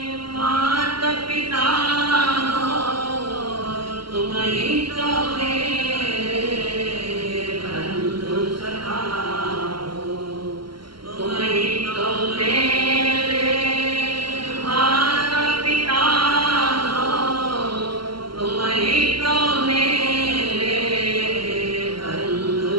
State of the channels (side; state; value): left; late; 0.73 ms